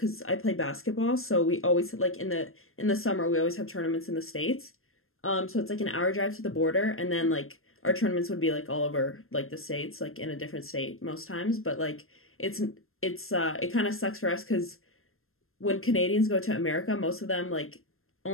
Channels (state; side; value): late; right; 0.61 ms